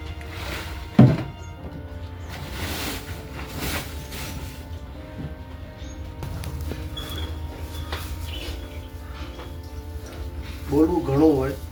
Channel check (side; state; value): both; identical; correlation 1.00